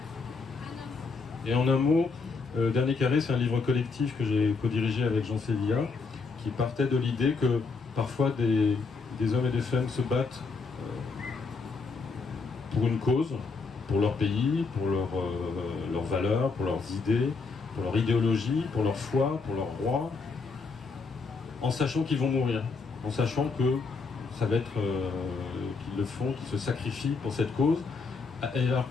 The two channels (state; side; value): quieter; right; 4.5 dB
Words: Et en un mot, Dernier Carré, c'est un livre collectif que j'ai co-dirigé avec Jean Sévilla, qui partait de l'idée que parfois des hommes et des femmes se battent pour une cause, pour leur pays, pour leurs valeurs, pour leurs idées, pour leur idéologie, pour leur foi, pour leur roi, en sachant qu'ils vont mourir, en sachant que ça va être qu'ils le font, qu'ils se sacrifient pour cette cause, alors